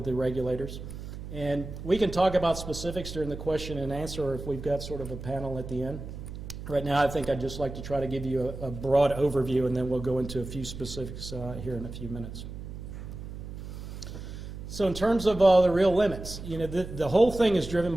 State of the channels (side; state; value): right; noise; hum, 10 dB below the sound